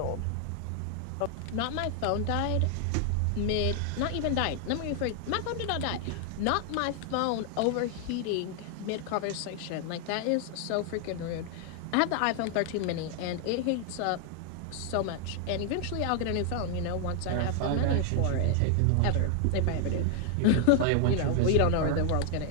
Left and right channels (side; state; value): both; different; correlation 0.00